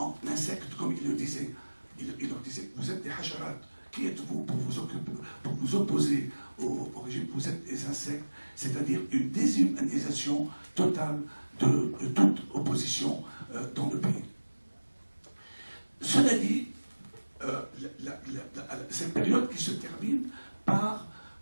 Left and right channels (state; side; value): inverted; both; correlation -1.00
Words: insectes, comme il le disait. Il leur disait, vous êtes des hacharat, qui êtes-vous pour vous opposer au régime? Vous êtes des insectes, c'est-à-dire une déshumanisation totale de toute opposition dans le pays. Cela dit, cette période qui se termine par